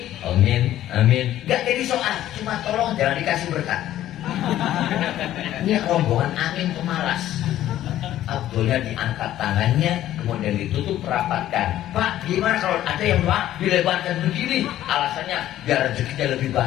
amin, amin. Gak jadi soal, cuma tolong jangan dikasih berkat. Ini rombongan amin pemalas. Abdulnya diangkat tangannya, kemudian ditutup rapatkan. Pak, gimana kalau ada yang doa dilebarkan begini? Alasannya biar rezekinya lebih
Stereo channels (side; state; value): right; quieter; 13.0 dB